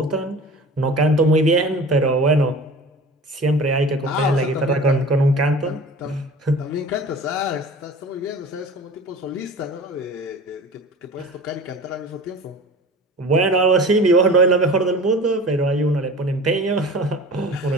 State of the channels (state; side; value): normal; both; correlation 0.39